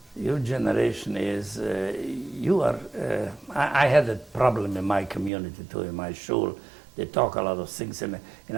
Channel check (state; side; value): drops out; left; at 5.3 s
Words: Your generation is, I had a problem in my community too, in my shul. They talk a lot of things, and